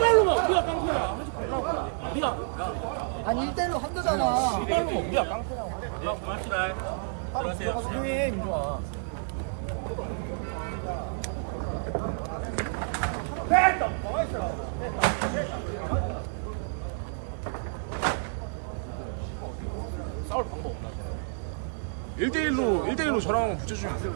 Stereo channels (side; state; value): left; silent; digital silence